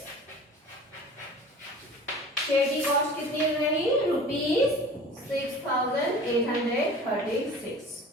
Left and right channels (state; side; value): normal; both; correlation 0.42